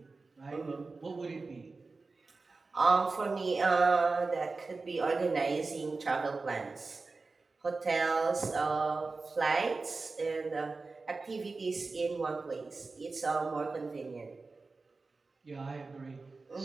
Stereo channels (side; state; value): left; quieter; 3.9 dB